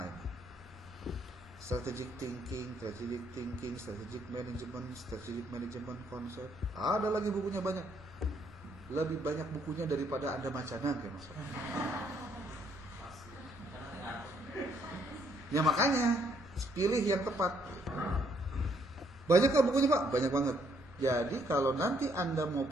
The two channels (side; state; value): both; normal; correlation 0.69